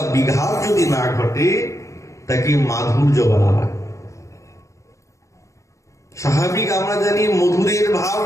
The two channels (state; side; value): late; right; 0.15 ms